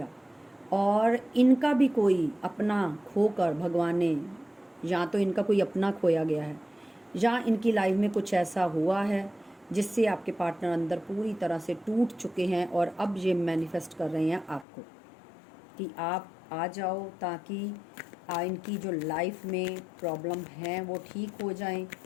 और इनका भी कोई अपना खोकर भगवान ने, या तो इनका कोई अपना खोया गया है, या इनकी लाइफ में कुछ ऐसा हुआ है जिससे आपके पार्टनर अंदर पूरी तरह से टूट चुके हैं, और अब ये मैनिफेस्ट कर रहे हैं आपको कि आप आ जाओ, ताकि इनकी जो लाइफ में प्रॉब्लम है वो ठीक हो जाएं।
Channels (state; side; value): drops out; right; at 14.7 s